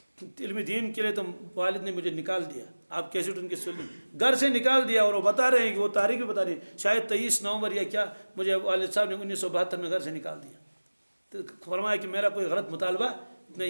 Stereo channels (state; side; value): inverted; both; correlation -1.00